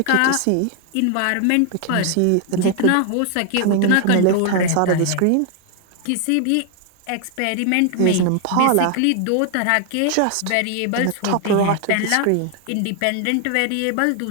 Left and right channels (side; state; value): both; different; correlation 0.00